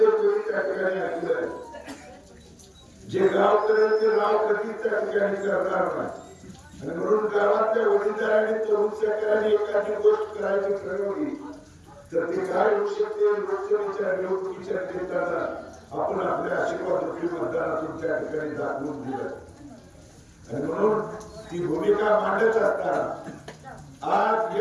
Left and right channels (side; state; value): both; identical; correlation 1.00